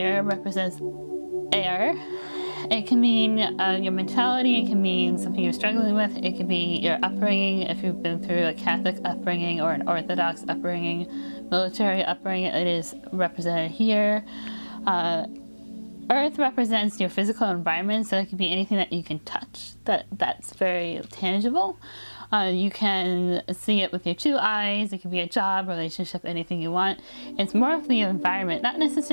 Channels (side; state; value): both; inverted; correlation -1.00